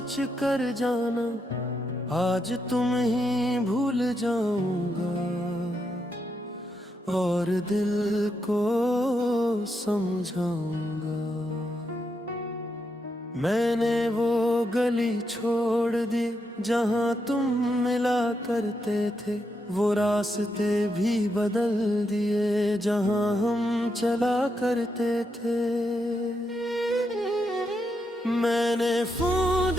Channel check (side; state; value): both; normal; correlation 0.82